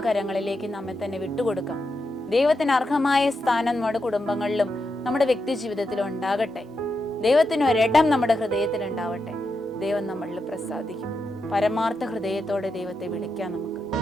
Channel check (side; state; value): both; normal; correlation 0.86